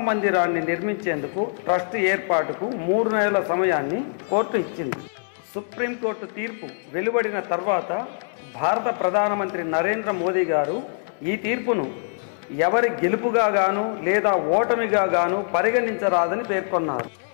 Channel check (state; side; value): silent; right; digital silence